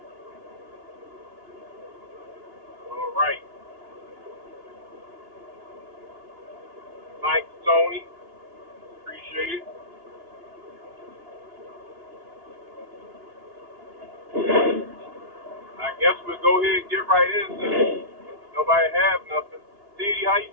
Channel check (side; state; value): left; late; 2.9 ms